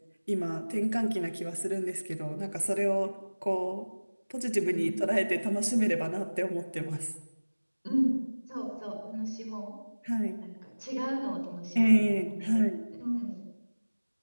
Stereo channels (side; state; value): both; inverted; correlation -1.00